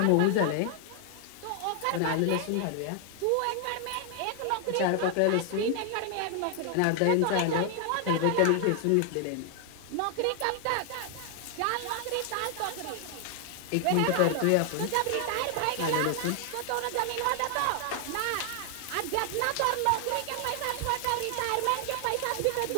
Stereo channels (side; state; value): both; different; correlation 0.00